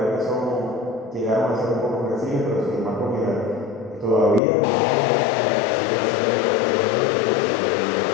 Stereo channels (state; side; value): drops out; right; at 4.4 s